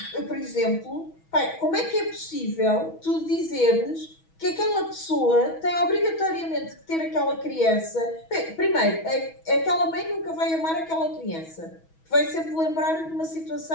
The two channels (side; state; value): right; late; 6.2 ms